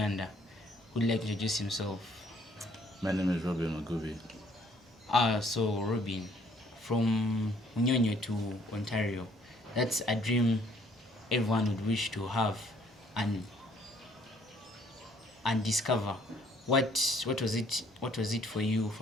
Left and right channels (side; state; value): both; normal; correlation 0.62